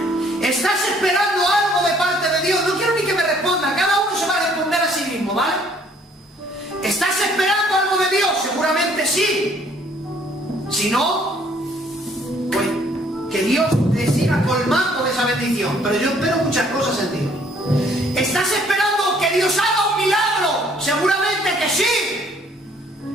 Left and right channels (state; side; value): normal; both; correlation 0.62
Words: ¿Estás esperando algo de parte de Dios? No quiero ni que me responda. Cada uno se va a responder a sí mismo, ¿vale? ¿Estás esperando algo de Dios? Seguramente sí. Si no, pues que Dios te siga colmando de esa bendición. Pero yo espero muchas cosas en Dios. ¿Estás esperando que Dios haga un milagro? Seguramente que sí.